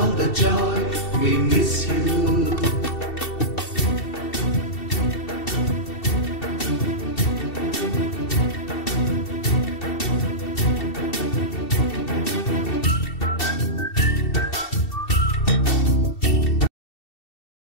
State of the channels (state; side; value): late; right; 2.7 ms